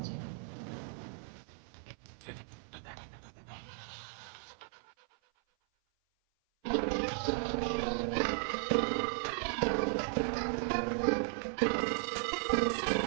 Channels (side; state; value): left; silent; 54 dB below the other